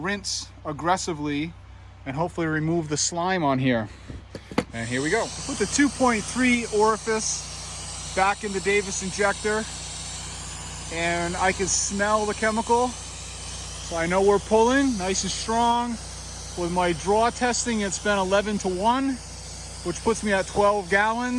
aggressively and hopefully remove the slime on here. And here we go. Put the 2.3 orifice back in the Davis injector and I can smell the chemical. So I know we're pulling nice and strong. With my draw testing, it's been 11-to-1, which puts me at 12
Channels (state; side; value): identical; both; correlation 1.00